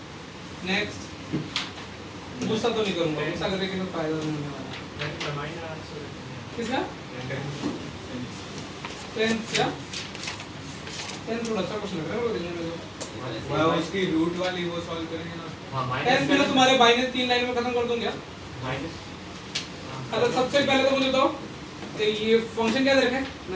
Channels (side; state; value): both; identical; correlation 1.00